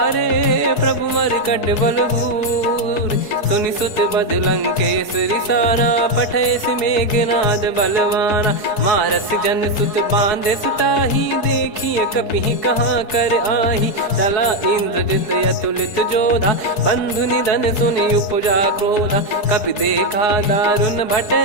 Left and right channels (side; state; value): right; late; 4.6 ms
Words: प्रभु मर कट बलभूर। सुनि सुत बद लंकेश्वरी साना, पठय सि मेघनाद बलवाना। मारस जन सुत बांधे सुताही, देखिए कपि कहाँ कर आही। चला इंद्रजित अतुलित जोधा, बंधु निधन सुनि उपजा क्रोधा। कपि देखा दारुण भट